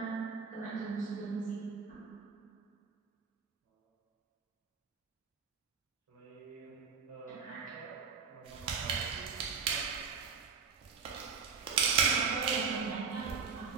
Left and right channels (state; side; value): quieter; left; 5.5 dB